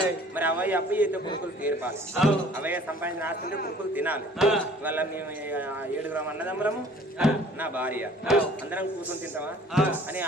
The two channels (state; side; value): normal; both; correlation 0.52